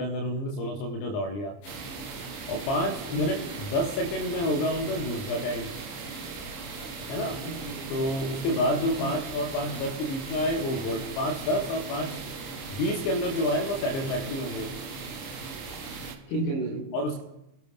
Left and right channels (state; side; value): late; right; 30 ms